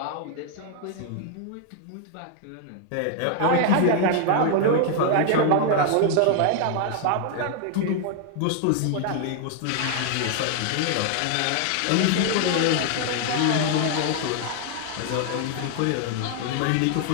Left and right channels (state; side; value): different; both; correlation 0.00